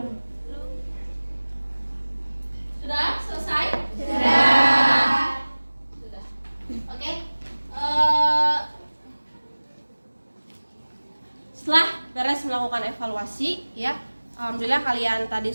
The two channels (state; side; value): inverted; both; correlation -1.00